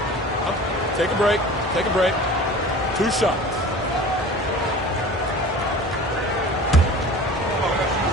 Take a break. Take a break. 2 shots.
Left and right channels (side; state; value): both; normal; correlation 0.40